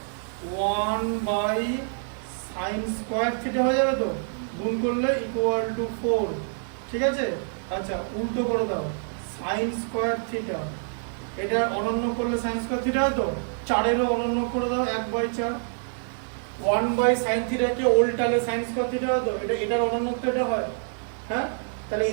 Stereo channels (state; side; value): silent; left; digital silence